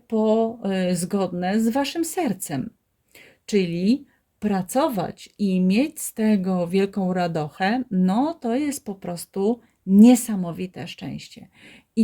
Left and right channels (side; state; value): both; identical; correlation 1.00